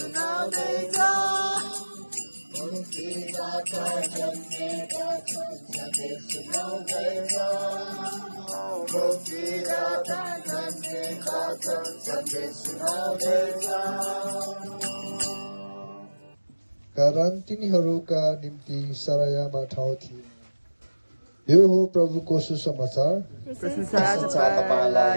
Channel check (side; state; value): both; inverted; correlation -1.00